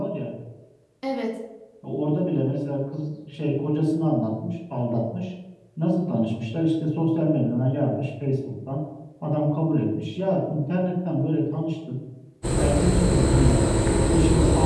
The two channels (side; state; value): both; identical; correlation 1.00